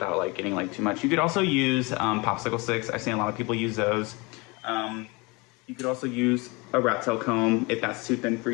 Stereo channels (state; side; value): quieter; right; 26.7 dB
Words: like getting like too much. You could also use popsicle sticks. I've seen a lot of people use those. You could also use a rat tail comb if that's too thin for